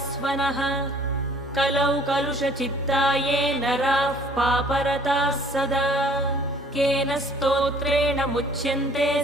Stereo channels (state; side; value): normal; both; correlation 0.55